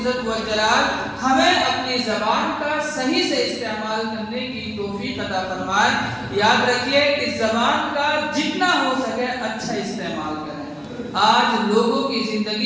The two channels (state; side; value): identical; both; correlation 1.00